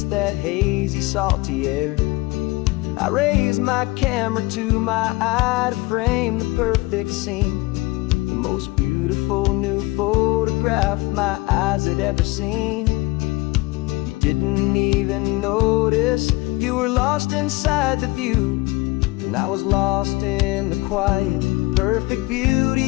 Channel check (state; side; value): quieter; right; 22.0 dB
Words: that hazy, salty air. I raised my camera to my eye to frame the perfect scene, the most beautiful new photograph my eyes had ever seen. You didn't even notice, you were lost inside the view, and I was lost in the quiet, perfect